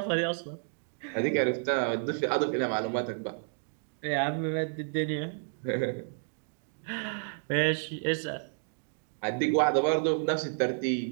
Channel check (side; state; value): left; silent; digital silence